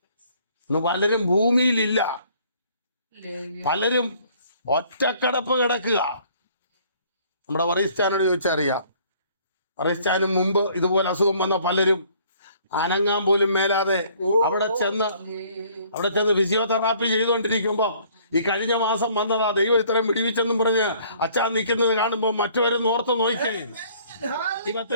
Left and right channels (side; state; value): both; inverted; correlation -0.58